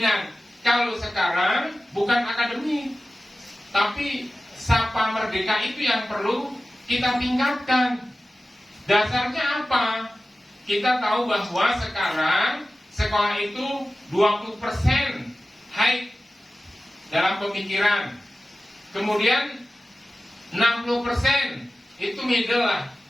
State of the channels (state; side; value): normal; both; correlation 0.95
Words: Kalau sekarang bukan akademik, tapi sapa merdeka itu yang perlu kita tingkatkan. Dasarnya apa? Kita tahu bahwa sekarang sekolah itu 20% high dalam pemikiran. Kemudian 60% itu middle lah